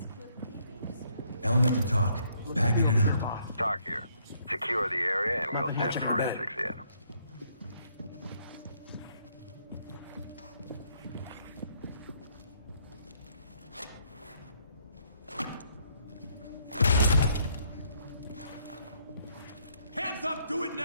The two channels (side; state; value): both; inverted; correlation -0.69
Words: clip may be disturbing. Element to talk. Bagging it up. Talk here. Secure the area and we'll send forensics in. Hands up! Do it